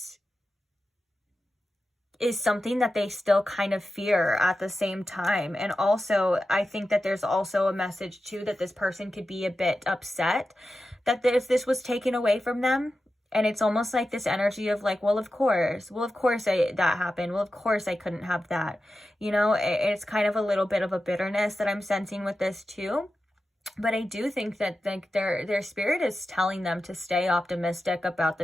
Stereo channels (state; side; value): normal; both; correlation 0.92